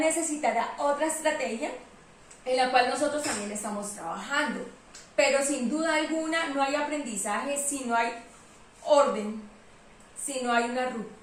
otra estrategia en la cual nosotros también estamos trabajando. Pero sin duda alguna no hay aprendizaje si no hay orden, si no hay una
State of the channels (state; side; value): identical; both; correlation 1.00